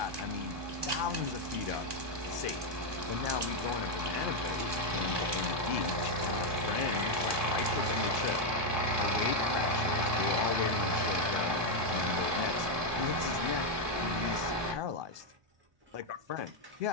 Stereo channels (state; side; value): late; left; 1.2 ms